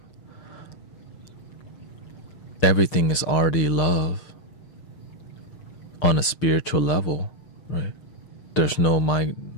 Everything is already love on a spiritual level, right? There's no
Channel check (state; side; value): late; right; 6.6 ms